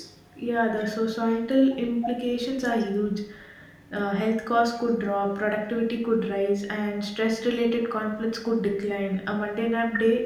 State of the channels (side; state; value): both; identical; correlation 1.00